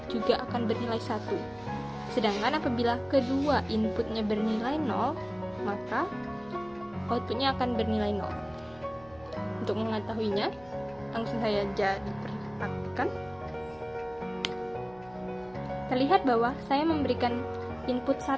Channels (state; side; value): noise; right; hum, 25 dB below the sound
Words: juga akan bernilai 1. Sedangkan apabila kedua inputnya bernilai 0, maka outputnya akan bernilai 0. Untuk mengetahuinya, langsung saya diperhatikan. Terlihat bahwa saya memberikan input